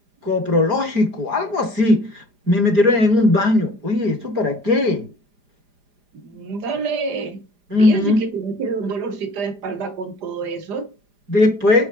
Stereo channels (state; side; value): late; left; 4.9 ms